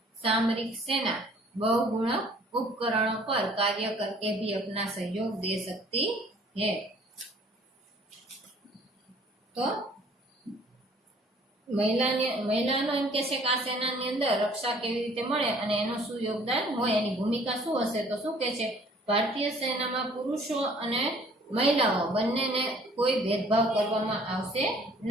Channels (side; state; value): both; normal; correlation 0.55